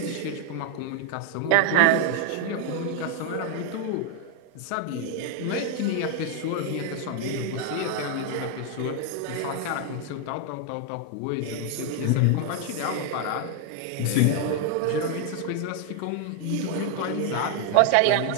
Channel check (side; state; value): both; different; correlation 0.00